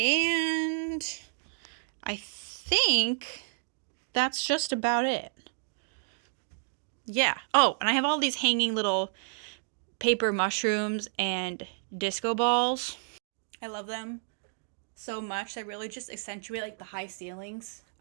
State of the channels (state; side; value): silent; left; digital silence